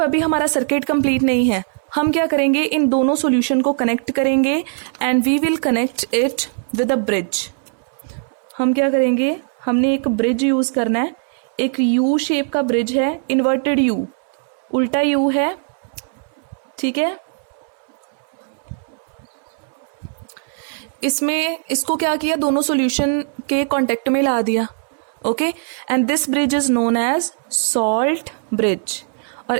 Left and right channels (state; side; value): silent; left; 62 dB below the other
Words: अभी हमारा सर्किट कंप्लीट नहीं है। हम क्या करेंगे? इन दोनों सॉल्यूशन को कनेक्ट करेंगे and we will connect it with a bridge. हम क्या करेंगे? हमने एक ब्रिज यूज करना है, एक यू शेप का ब्रिज है, इन्वर्टेड यू, उल्टा यू है। ठीक है, इसमें इसको क्या किया? दोनों सॉल्यूशन के कांटेक्ट में ला दिया। Okay, and this bridge is known as salt bridge. और